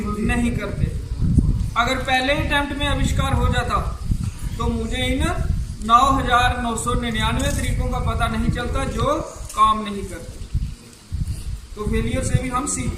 नहीं करते। अगर पहले अटेम्प्ट में आविष्कार हो जाता तो मुझे इन 9,999 तरीकों का पता नहीं चलता जो काम नहीं करते। तो फेलियर से भी हम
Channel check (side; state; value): both; identical; correlation 1.00